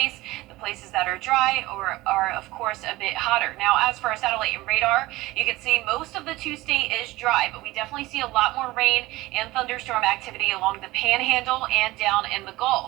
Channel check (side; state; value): left; quieter; 19.2 dB